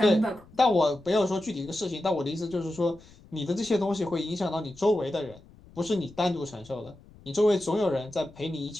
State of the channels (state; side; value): noise; left; rumble, 24 dB below the sound